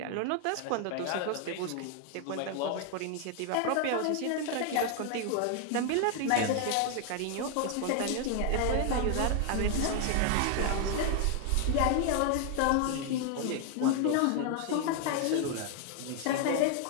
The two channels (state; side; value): different; both; correlation 0.00